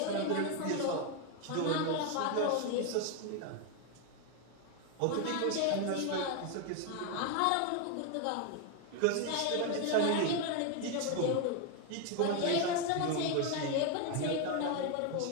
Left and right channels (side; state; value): both; different; correlation 0.01